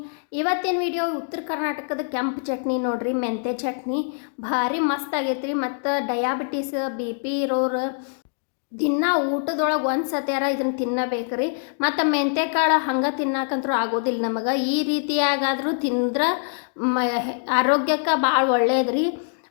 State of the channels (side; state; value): right; silent; digital silence